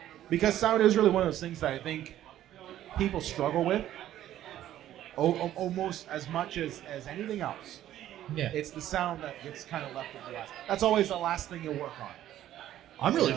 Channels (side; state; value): left; quieter; 12.5 dB